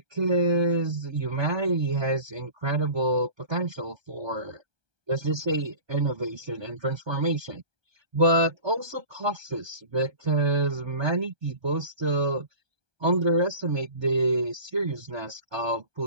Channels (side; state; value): left; late; 1.2 ms